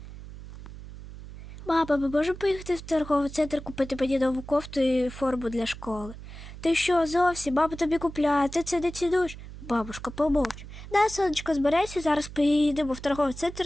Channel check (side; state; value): right; noise; hum, 14 dB below the sound